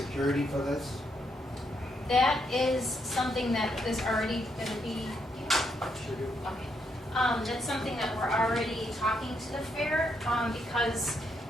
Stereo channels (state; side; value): normal; both; correlation 0.77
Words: for this? That is something that is already gonna be. Okay. That's something that we're already talking to the fair, because